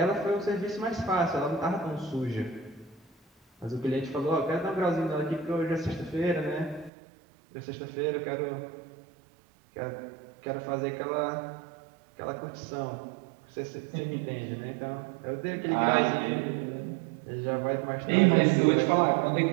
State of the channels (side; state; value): left; drops out; at 6.9 s